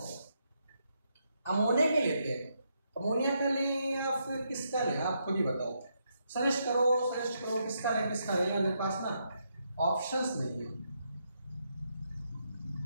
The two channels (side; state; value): both; inverted; correlation -0.79